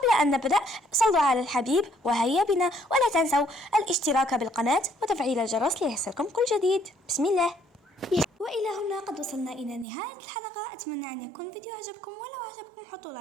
أن نبدأ صلوا على الحبيب وهيا بنا، ولا تنسوا الاشتراك بالقناة وتفعيل الجرس ليصلكم كل جديد. بسم الله. وإلى هنا قد وصلنا إلى نهاية الحلقة. أتمنى أن يكون الفيديو عجبكم، ولو عجبكم حطوا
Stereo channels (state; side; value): drops out; left; at 9.9 s